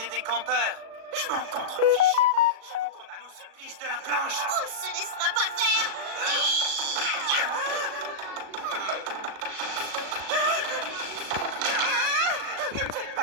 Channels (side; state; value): left; late; 37 ms